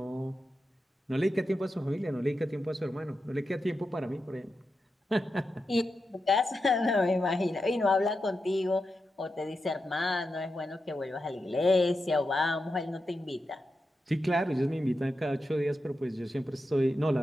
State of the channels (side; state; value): both; normal; correlation 0.89